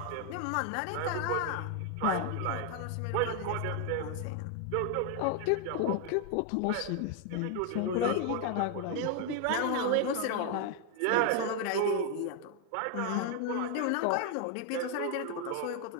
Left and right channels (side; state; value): both; different; correlation 0.00